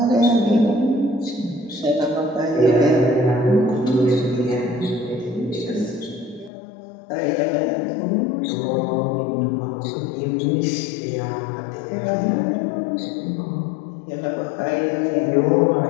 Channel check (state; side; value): drops out; right; at 6.5 s